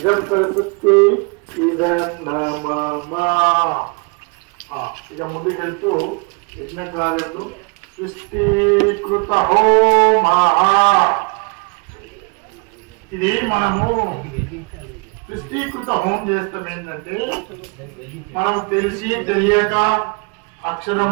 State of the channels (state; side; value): quieter; left; 31.7 dB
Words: सरस्वत्यै इदं नमः। ఇక ముందుకెళ్తూ యజ్ఞకు రాలేదు సృష్టికృత హోమ. ఇది మనము సృష్టికృత హోమం చేస్తాం. ఏంటంటే మనం తెలిసి తెలియక